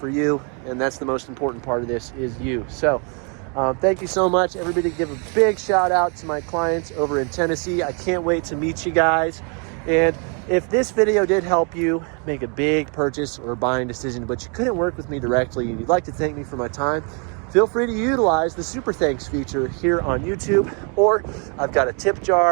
you. And that's the most important part of this, is you. So thank you so much. Everybody give a big shout out to my clients over in Tennessee. I can't wait to meet you guys. And if this video did help you make a big purchase or buying decision, but you couldn't work with me directly and you'd like to thank me for my time, feel free to utilize the Super Thanks feature here on YouTube, or I've got a tip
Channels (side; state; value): left; quieter; 37.0 dB